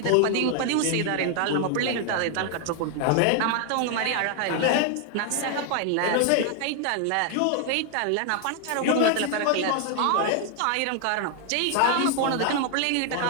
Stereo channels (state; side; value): different; both; correlation 0.00